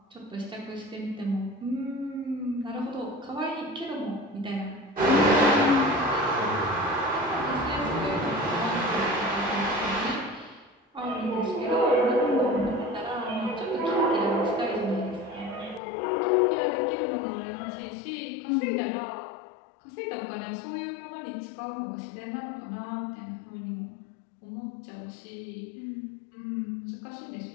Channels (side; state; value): right; drops out; at 15.8 s